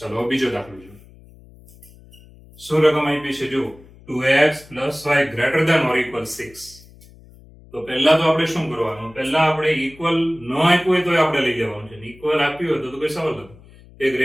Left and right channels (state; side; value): noise; left; hum, 23 dB below the sound